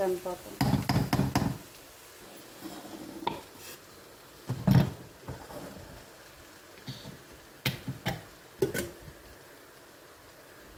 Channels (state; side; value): identical; both; correlation 1.00